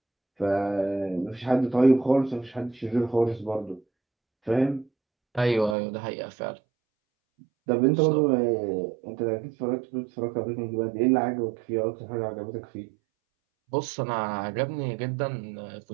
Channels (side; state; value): left; drops out; at 5.8 s